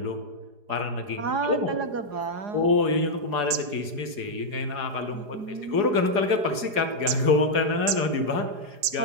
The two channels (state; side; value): late; left; 4.9 ms